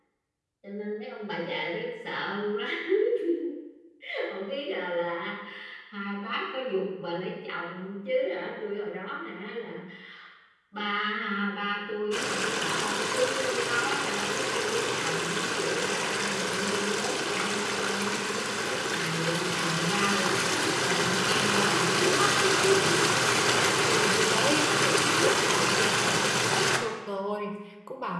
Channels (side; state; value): both; identical; correlation 1.00